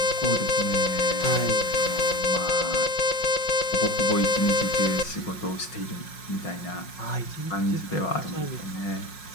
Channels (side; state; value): right; late; 5.5 ms